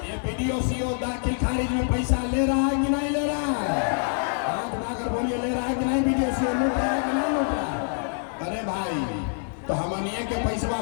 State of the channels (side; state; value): right; silent; 58 dB below the other